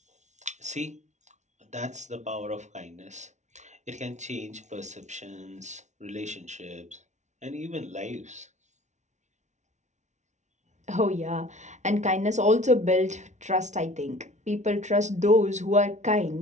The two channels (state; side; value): late; left; 0.34 ms